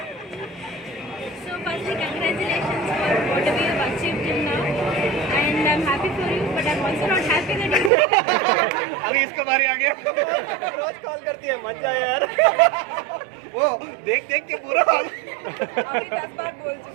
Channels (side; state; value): left; drops out; at 7.9 s